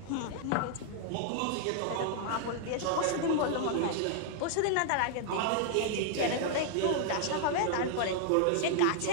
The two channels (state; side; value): different; both; correlation -0.01